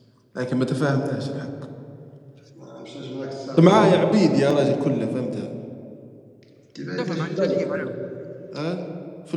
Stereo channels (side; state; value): both; identical; correlation 1.00